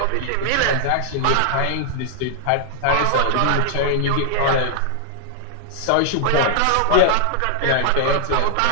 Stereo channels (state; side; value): different; both; correlation 0.00